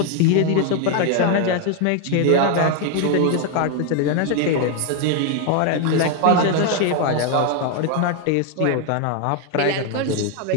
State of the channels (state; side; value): different; both; correlation 0.01